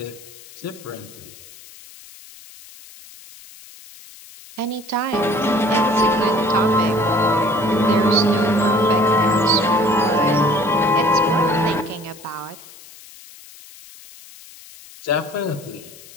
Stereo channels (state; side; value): noise; left; hiss, 20 dB below the sound